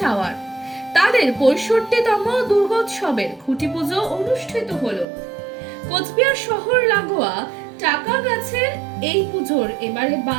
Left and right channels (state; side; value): drops out; left; at 5.1 s